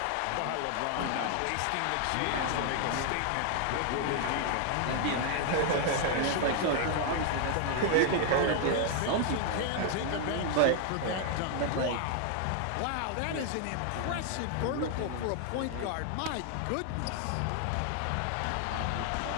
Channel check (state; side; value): different; both; correlation 0.00